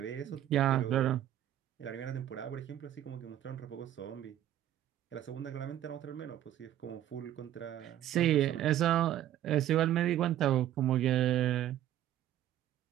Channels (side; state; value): left; quieter; 12.2 dB